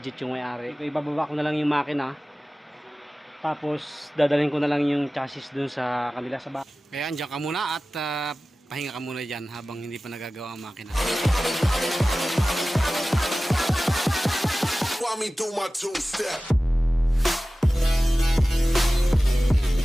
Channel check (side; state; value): both; normal; correlation 0.96